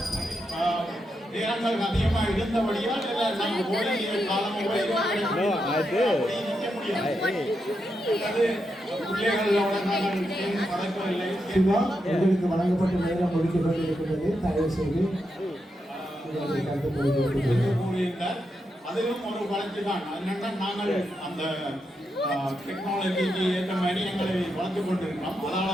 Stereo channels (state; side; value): normal; both; correlation 0.84